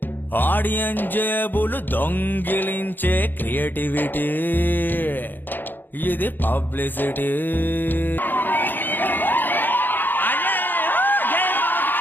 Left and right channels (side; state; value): right; late; 0.091 ms